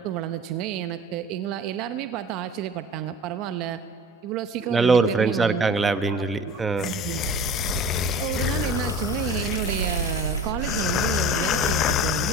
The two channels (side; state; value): both; normal; correlation 0.38